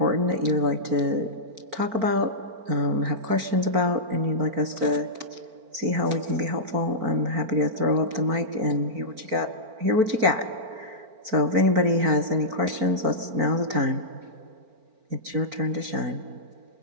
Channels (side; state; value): left; late; 4.4 ms